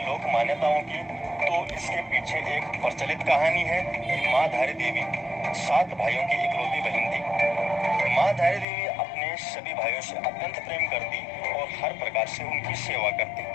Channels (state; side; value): drops out; right; at 8.7 s